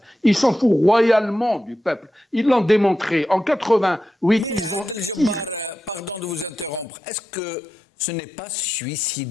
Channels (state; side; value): drops out; right; at 6.9 s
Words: Il s'en fout royalement du peuple. Ils l'ont démontré en 88. Mais Adel Jabbar, pardon de vous interrompre, est-ce que ce n'est pas